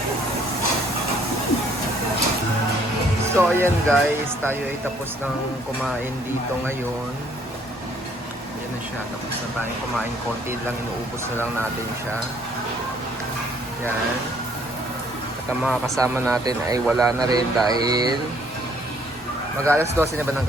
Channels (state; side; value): normal; both; correlation 0.63